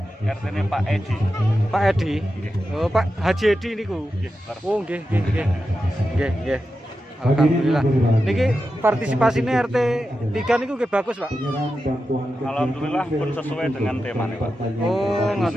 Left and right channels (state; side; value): normal; both; correlation 0.90